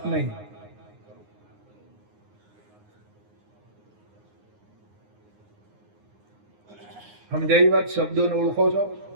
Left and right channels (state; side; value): late; left; 9.6 ms